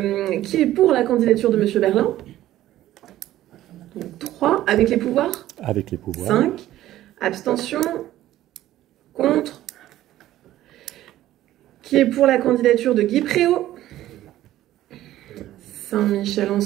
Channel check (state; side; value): quieter; left; 14.0 dB